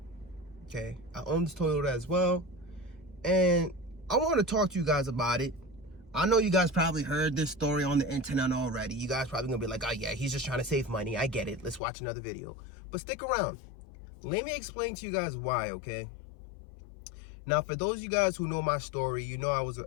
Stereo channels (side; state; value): right; drops out; at 11.8 s